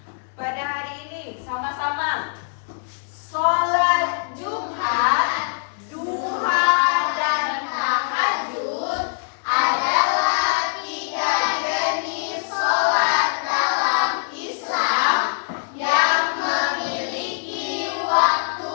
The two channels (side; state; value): right; silent; 64 dB below the other